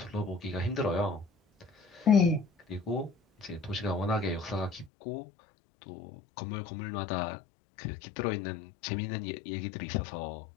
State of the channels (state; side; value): drops out; right; at 4.9 s